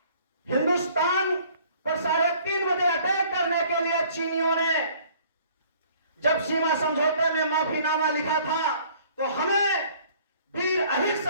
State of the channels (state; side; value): inverted; both; correlation -0.56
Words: हिंदुस्तान पर 3:30 बजे अटैक करने के लिए चीनियों ने जब सीमा समझौते में माफीनामा लिखा था तो हमें वीर अहिर